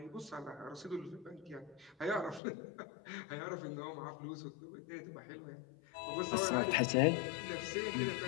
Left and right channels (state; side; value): drops out; right; at 2.4 s